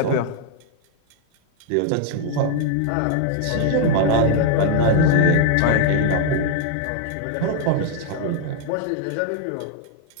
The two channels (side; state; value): both; different; correlation 0.00